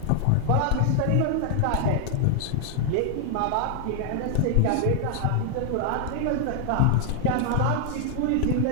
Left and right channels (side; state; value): both; different; correlation 0.00